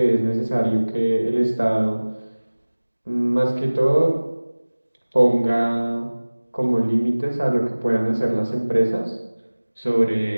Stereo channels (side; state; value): both; inverted; correlation -1.00